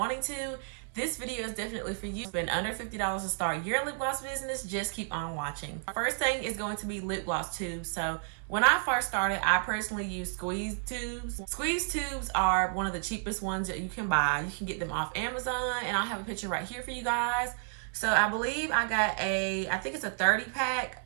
to, this video is definitely for you. Spend under $50 to start your lip gloss business. Just keep on watching. First thing is going to be lip gloss tubes. So when I first started, I personally used squeeze tubes. Squeeze tubes are one of the cheapest ones that you can buy. You can get them off Amazon, and I'll have a picture right here for you guys. So I believe I got I think it's a 30 pack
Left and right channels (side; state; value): left; silent; digital silence